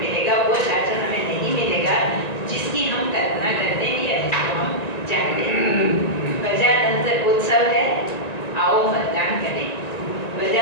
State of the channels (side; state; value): right; late; 1.9 ms